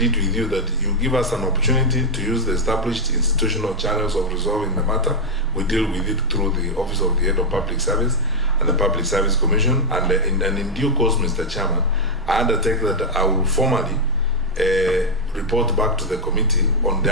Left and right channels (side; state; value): both; normal; correlation -0.01